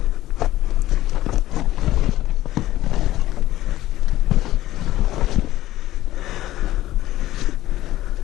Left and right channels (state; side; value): quieter; right; 14.9 dB